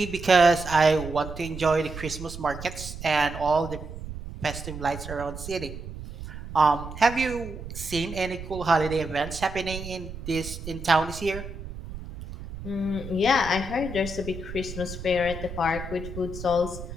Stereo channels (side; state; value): right; noise; rumble, 11 dB below the sound